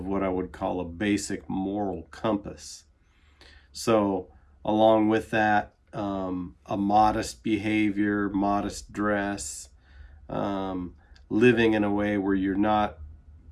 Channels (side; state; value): both; identical; correlation 1.00